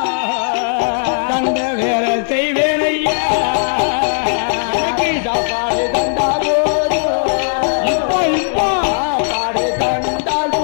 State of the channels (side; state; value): right; silent; digital silence